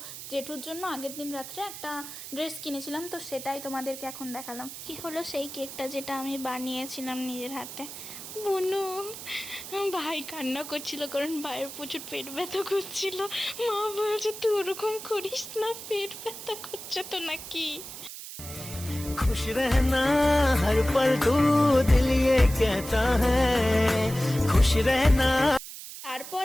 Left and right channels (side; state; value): right; noise; hiss, 11 dB below the sound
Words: জেঠুর জন্য আগের দিন রাত্রে একটা ড্রেস কিনেছিলাম, তো সেটাই তোমাদেরকে এখন দেখালাম। কি হলো সেই কেকটা যেটা আমি বানিয়েছিলাম নিজের হাতে। বুনু ভাই কান্না করছিল, কারণ ভাইয়ের প্রচুর পেট ব্যথা করছিল। মা বলছে তুই ওরকম করিস না, পেট ব্যথা করছে তো নাকি। खुश रहना हर पल तू दिल ये कहता है खुश रहना। তারপর